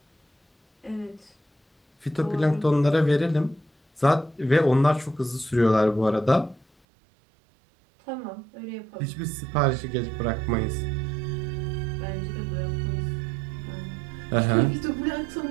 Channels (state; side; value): drops out; left; at 6.7 s